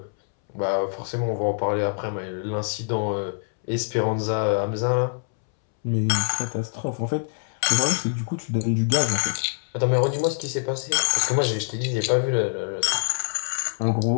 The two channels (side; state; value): right; silent; 62 dB below the other